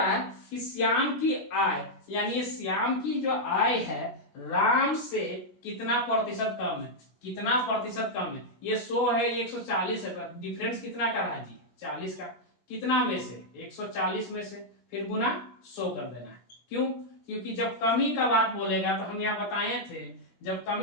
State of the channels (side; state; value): right; late; 16 ms